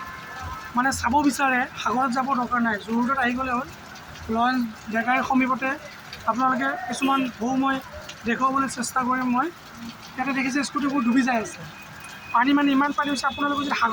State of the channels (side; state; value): both; identical; correlation 1.00